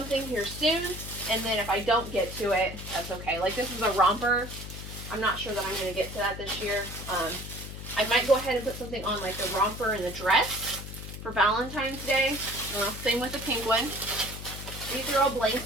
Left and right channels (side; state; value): left; noise; hum, 10 dB below the sound